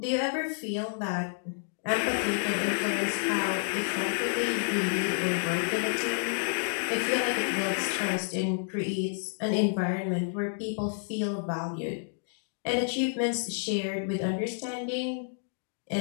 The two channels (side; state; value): right; silent; 58 dB below the other